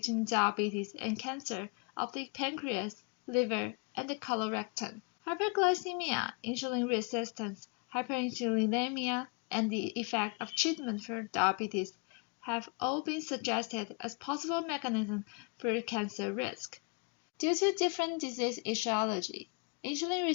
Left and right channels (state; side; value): quieter; right; 31.8 dB